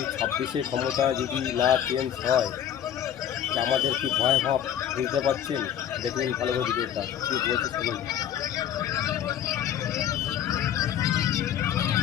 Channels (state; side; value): quieter; right; 10.0 dB